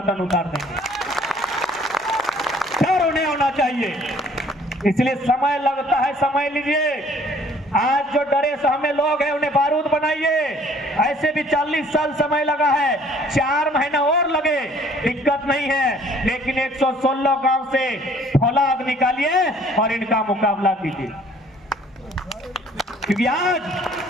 उतार देंगे। डर उन्हें होना चाहिए, इसलिए समय लगता है, समय लीजिए। आज जो डरे सहमे लोग हैं उन्हें बारूद बनाइए। ऐसे भी 40 साल समय लगा है, 4 महीना और लगे, दिक्कत नहीं है, लेकिन 116 गांव से फौलाद निकालिए और इनका मुकाबला कीजिए। क्योंकि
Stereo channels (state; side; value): normal; both; correlation 0.57